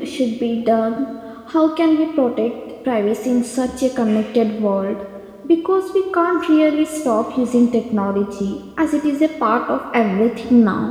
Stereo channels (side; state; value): both; identical; correlation 1.00